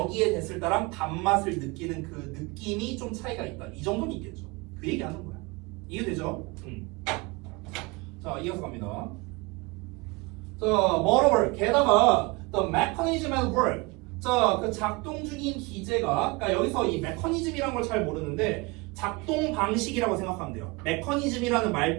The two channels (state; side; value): quieter; left; 25.4 dB